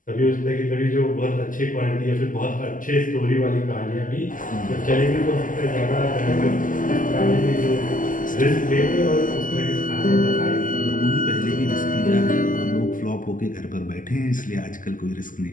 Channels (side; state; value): right; late; 0.38 ms